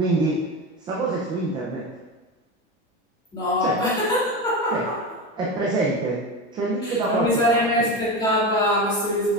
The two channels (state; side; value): normal; both; correlation 0.22